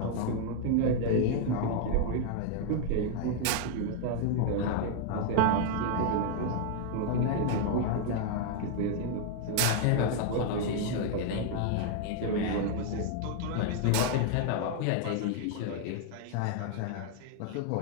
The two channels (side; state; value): both; different; correlation 0.00